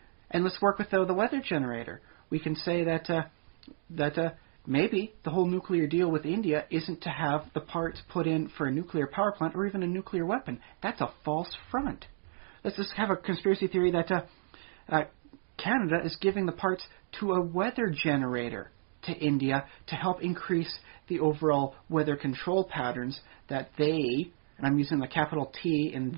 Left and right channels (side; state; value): left; silent; digital silence